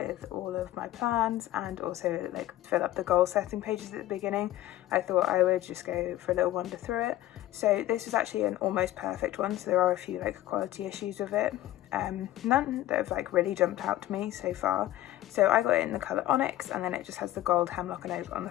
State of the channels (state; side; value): quieter; right; 14.5 dB